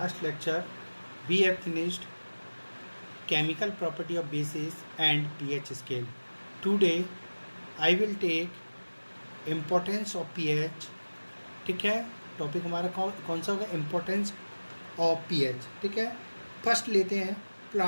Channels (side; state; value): both; inverted; correlation -1.00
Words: lecture we have finished chemical property of bases and pH scale. Today I will take importance of pH. ठीक है, topic हमारा कौन सा होगा? Importance of pH. ठीक है, first लेते हैं